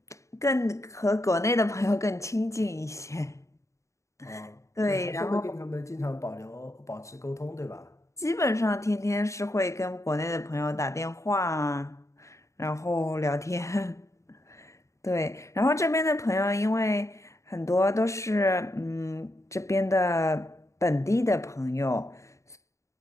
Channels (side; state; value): right; late; 0.15 ms